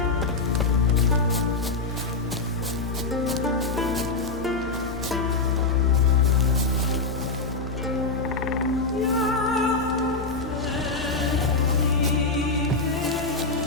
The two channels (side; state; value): right; quieter; 3.8 dB